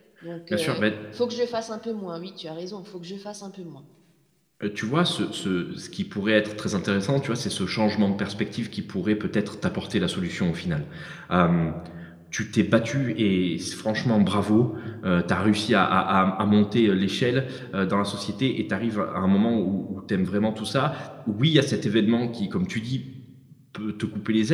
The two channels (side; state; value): both; identical; correlation 1.00